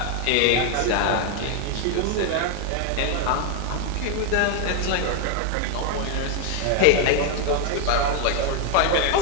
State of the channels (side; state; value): both; different; correlation 0.01